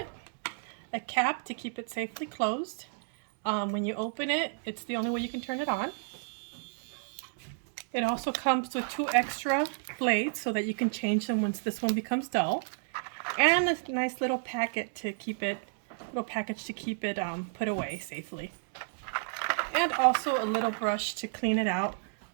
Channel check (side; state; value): left; silent; digital silence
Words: a cap to keep it safely closed. When you open it, it's the only way you can turn it on. It also comes with 2 extra blades so that you can change them once this one becomes dull. And a nice little packet to keep it, put away safely. And also a little brush to clean it out